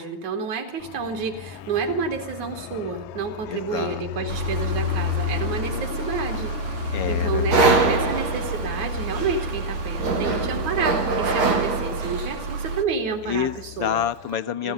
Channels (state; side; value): late; left; 7.2 ms